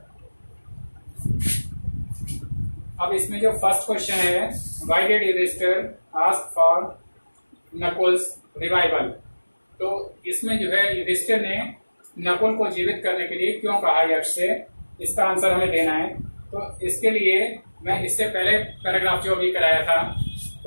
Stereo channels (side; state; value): both; inverted; correlation -1.00